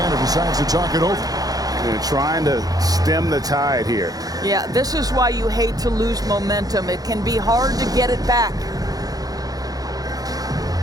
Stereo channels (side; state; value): left; late; 0.18 ms